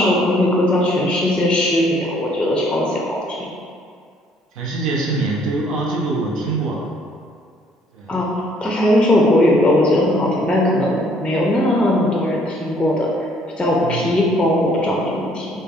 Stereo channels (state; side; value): normal; both; correlation 0.63